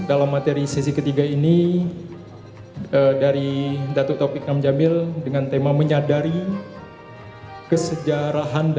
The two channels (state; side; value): identical; both; correlation 1.00